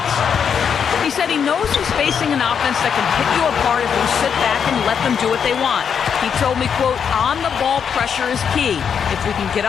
He said he knows he's facing an offense that can pick you apart if you sit back and let them do what they want. He told me, quote, on-the-ball pressure is key. If we can get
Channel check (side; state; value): right; quieter; 7.3 dB